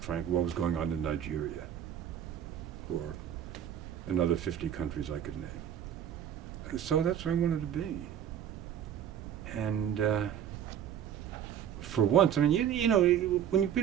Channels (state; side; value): quieter; left; 9.6 dB